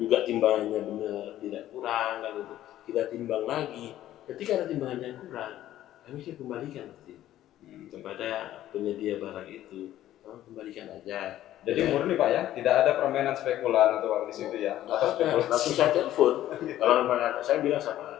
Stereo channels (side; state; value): right; quieter; 13.2 dB